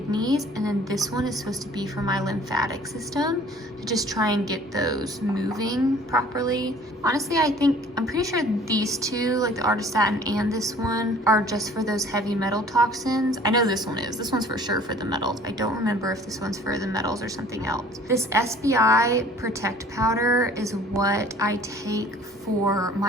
and then this one is supposed to be for my lymphatic system, to just try and get those moving properly. Honestly, I'm pretty sure these two, like the Artistatin and this one, are just for those heavy metal toxins. I know this one is. This one's for sure for the metals. I don't remember if this one's for the metals or something else. This SBI Protect Powder is what I take for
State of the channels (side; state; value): both; normal; correlation 0.51